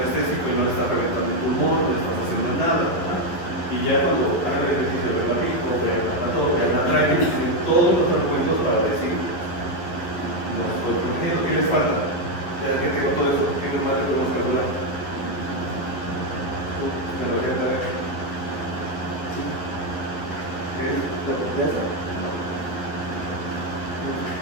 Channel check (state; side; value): late; right; 11 ms